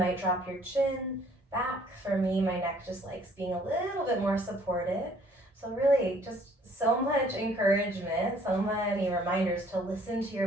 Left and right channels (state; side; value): normal; both; correlation 0.59